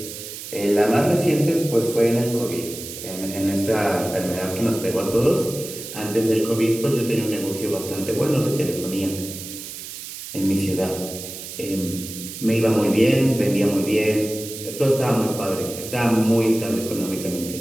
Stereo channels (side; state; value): right; noise; hiss, 10 dB below the sound